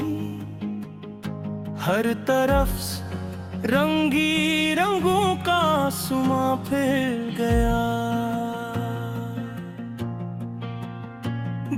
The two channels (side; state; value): both; identical; correlation 1.00